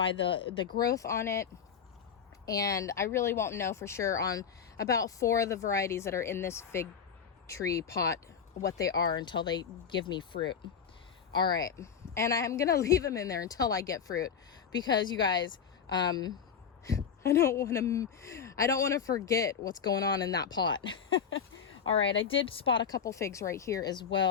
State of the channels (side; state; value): right; quieter; 7.1 dB